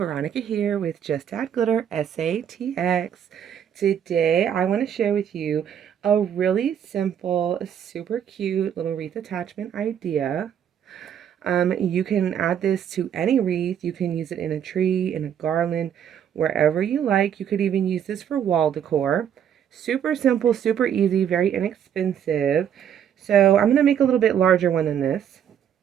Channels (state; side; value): quieter; left; 9.0 dB